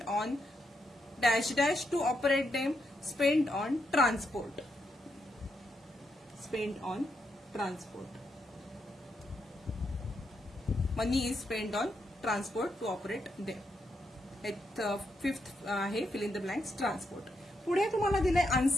on dash dash to operate them. Spent on transport. Spent on transport. Money is spent on transport to operate them. फिफ्थ आहे fill in the blanks transport. पुढे तुम्हाला दिलंय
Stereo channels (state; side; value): normal; both; correlation 0.81